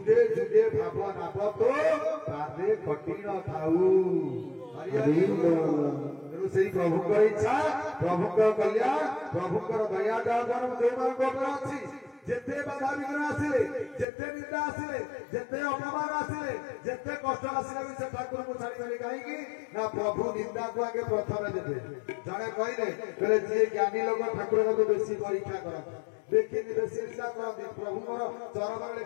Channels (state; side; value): drops out; right; at 14.1 s